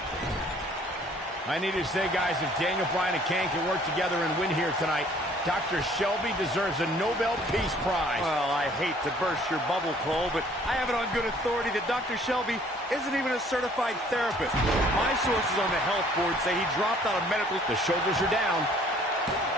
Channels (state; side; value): normal; both; correlation 0.57